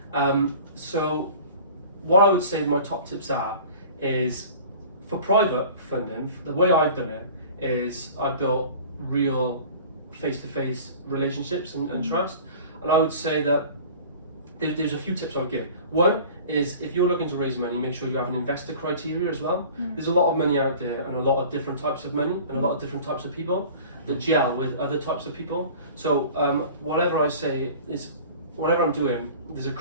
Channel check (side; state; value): both; inverted; correlation -0.43